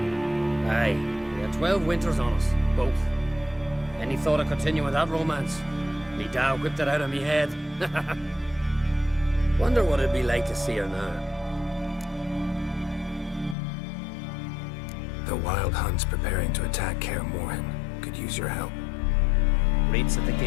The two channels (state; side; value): drops out; right; at 13.6 s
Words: Aye. We had 12 winters on us. Both. Any thought of continuing that romance? Me Dow whipped it out of me head. Wonder what it'd be like to see her now. The Wild Hunt's preparing to attack Kaer Morhen. Could use your help. Raid's at the